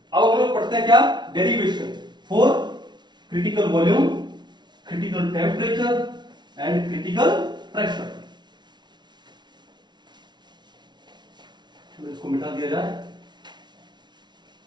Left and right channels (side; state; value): left; late; 0.21 ms